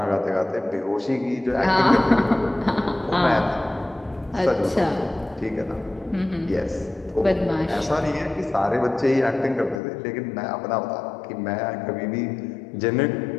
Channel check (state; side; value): drops out; right; at 9.8 s